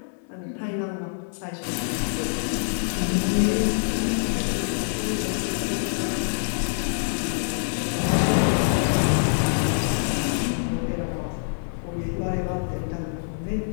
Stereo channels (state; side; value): silent; right; digital silence